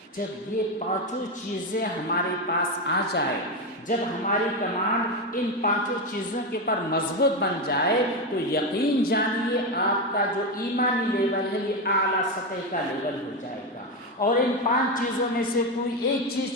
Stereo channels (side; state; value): both; normal; correlation 0.12